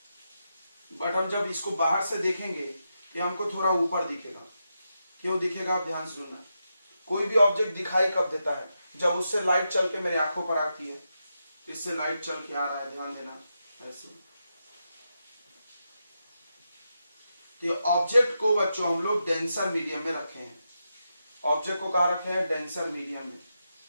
बट हम जब इसको बाहर से देखेंगे तो हमको थोड़ा ऊपर दिखेगा। क्यों दिखेगा? आप ध्यान से सुनना। कोई भी ऑब्जेक्ट दिखाई कब देता है? जब उससे लाइट चल के मेरी आंखों पर आती है। इससे लाइट चल के आ रहा है, ध्यान देना ऐसे। तो ऑब्जेक्ट को बच्चों हम लोग डेंसर मीडियम में रखे हैं। ऑब्जेक्ट को कहा रखे हैं? डेंसर मीडियम में।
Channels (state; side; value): inverted; both; correlation -0.86